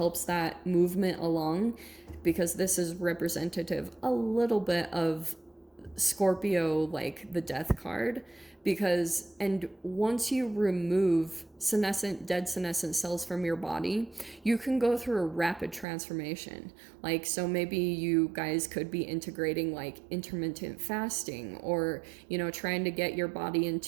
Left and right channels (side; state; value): left; drops out; at 15.9 s